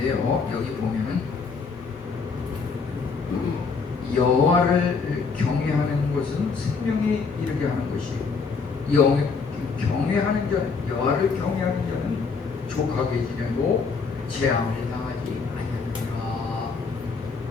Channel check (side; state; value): right; quieter; 5.0 dB